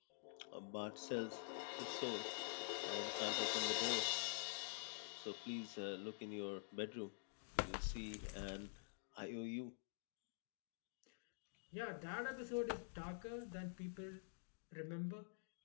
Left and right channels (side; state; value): right; silent; digital silence